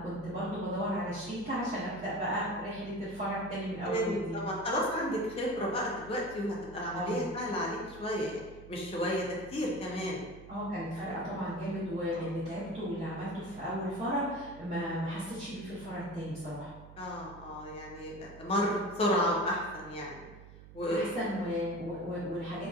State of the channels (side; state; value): right; noise; hum, 17 dB below the sound